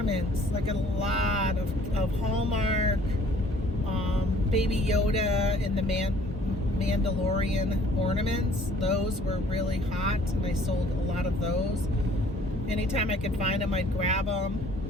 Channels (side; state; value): both; normal; correlation 0.56